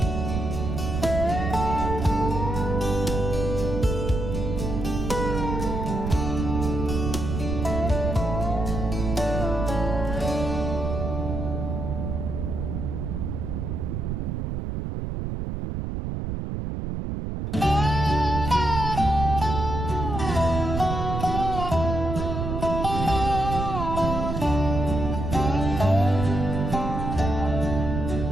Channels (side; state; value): right; noise; rumble, 3 dB below the sound